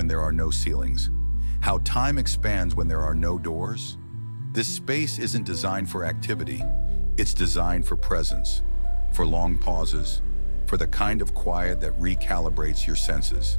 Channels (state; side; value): inverted; both; correlation -1.00